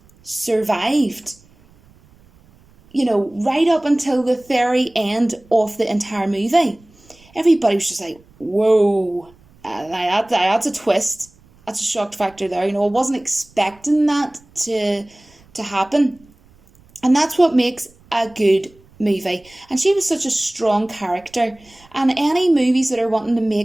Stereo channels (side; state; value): right; noise; rumble, 29 dB below the sound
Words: survived, you know, right up until the very end of the entire movie, everybody was just like, whoa, that's a twist. That's a shock factor there. You know, I wasn't expecting that to happen. And that's what makes a good movie. And she was such a strong character. And any movies that are wanting to